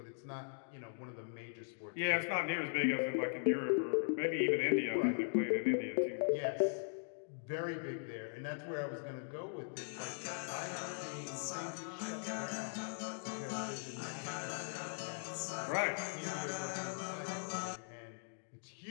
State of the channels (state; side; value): silent; right; digital silence